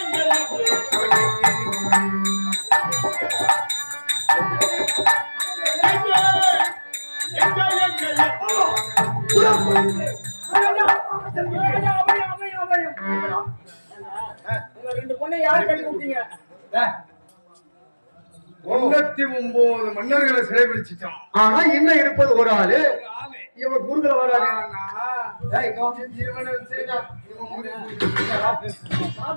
ரெண்டு பொண்ணை யாரு கட்டி கொடுத்தீங்க? 99 மன்னர்களை சிறைபிடிச்சிட்டோம். ஆனா இன்னும் இருப்பது ஒரு ஆளு. இவன் குறுக்கல வராது.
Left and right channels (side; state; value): both; inverted; correlation -1.00